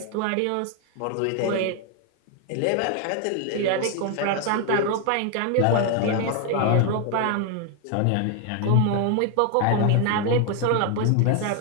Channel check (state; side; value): different; both; correlation 0.01